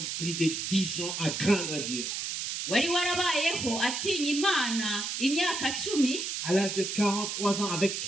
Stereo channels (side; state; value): right; noise; hiss, 3 dB below the sound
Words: plus de 10 ans à craindre Dieu. wari warabayeho atinya imana imyaka 10 À l'âge de 43 ans avec